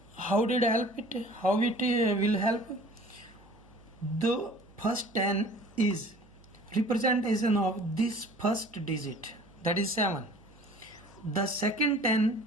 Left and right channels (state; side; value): noise; right; hum, 26 dB below the sound